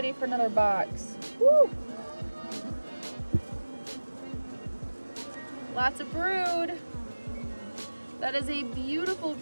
for another box. Woo! Lots of brood. That is a beautiful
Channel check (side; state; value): both; inverted; correlation -1.00